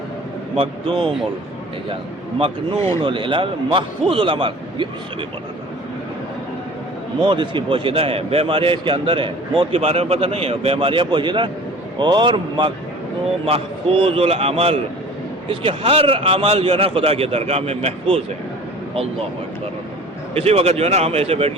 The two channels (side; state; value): both; normal; correlation 0.43